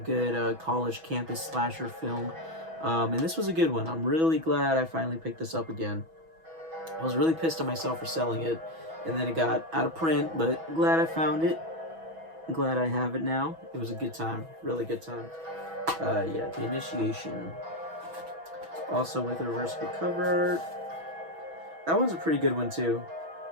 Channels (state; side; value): late; left; 6.1 ms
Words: college campus slasher film. And this was a good one. I'm really glad I finally picked this up again. I was really pissed at myself for selling it. And then it got out of print, but glad I found it. Glad I have it now. It was a good time. Really good time. Yeah, The Initiation. Also with a reversible cover art. That one's a pretty good one, too.